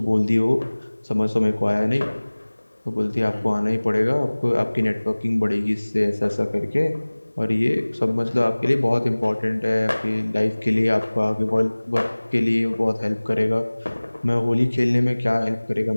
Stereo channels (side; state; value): both; inverted; correlation -1.00